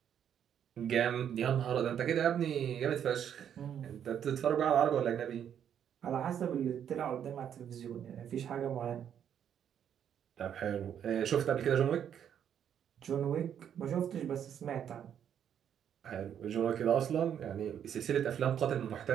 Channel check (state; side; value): quieter; left; 9.1 dB